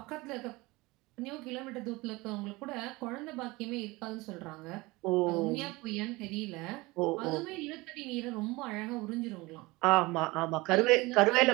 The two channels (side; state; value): left; quieter; 22.3 dB